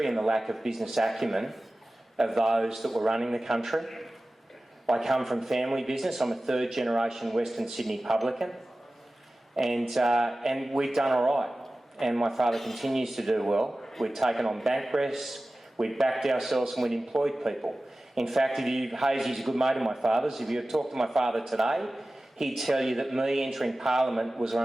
and the lack of business acumen of those that were running the country. I come from family business. I'm a third generation Western Sydney publican, and we've done all right. And my father continues to do well. We've taken on bank risks, we've backed ourselves, and we've employed people. In fact, Hazy's a good mate of my father's. If you talk to my father today, he'd tell you that me entering Parliament was one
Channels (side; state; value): both; normal; correlation 0.96